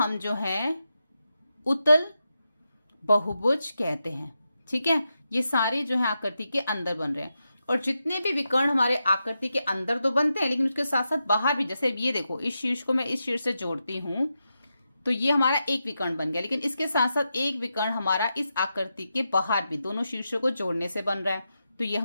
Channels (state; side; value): inverted; both; correlation -0.88